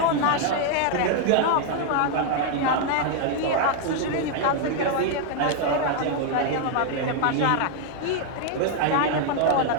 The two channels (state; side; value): different; both; correlation 0.00